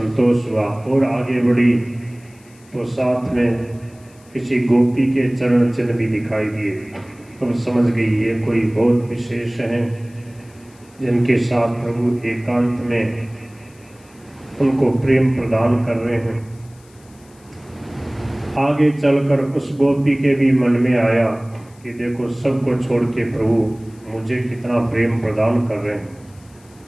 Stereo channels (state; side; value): noise; left; hiss, 29 dB below the sound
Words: हुआ और आगे बढ़ी तो साथ में किसी गोपी के चरण चिन्ह भी दिखाई दिए। तो समझ गई ये कोई बहुत विशेष हैं जिनके साथ प्रभु एकांत में उनको प्रेम प्रदान कर रहे हैं। आगे चलकर उस गोपी के भी मन में आया कि देखो सबको छोड़ के प्रभु मुझे कितना प्रेम प्रदान कर रहे हैं,